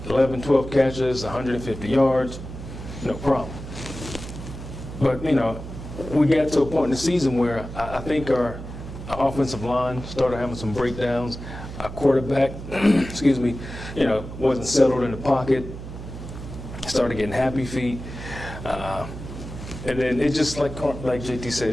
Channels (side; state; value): right; noise; hum, 10 dB below the sound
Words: 12 catches, 150 yards, no problem. But, we got to a point in the season where I think our offensive line started having some breakdowns. Our quarterback, wasn't settled in the pocket. started getting happy feet. And then it just, like JT